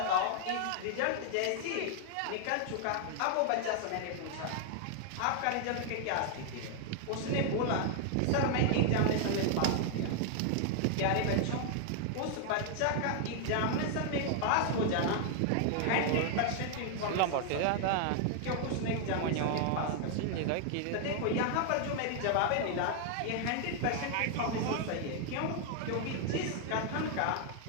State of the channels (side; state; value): both; different; correlation 0.00